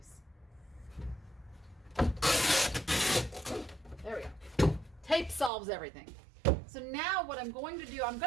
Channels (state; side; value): drops out; left; at 5.5 s